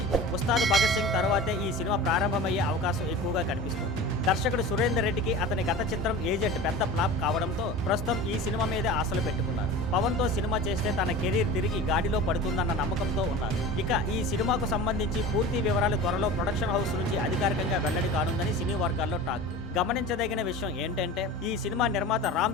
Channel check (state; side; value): normal; both; correlation 0.35